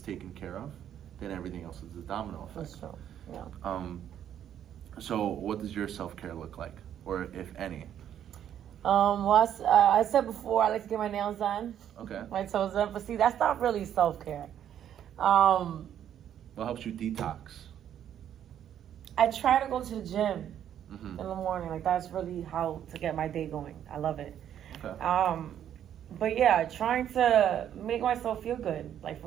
taken care of, then everything else is a domino effect. That's true. Yeah. So what does your self-care look like, or if any? Well, I said before, I like to get my nails done, Okay. my toes done, but see, that's not really self-care. What helps you detox? I try to go to the gym Mm-hmm. in the morning. Like, that's really how to get my day going. I love it. Okay. But yeah, trying to make myself feel good, like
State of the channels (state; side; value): quieter; left; 10.1 dB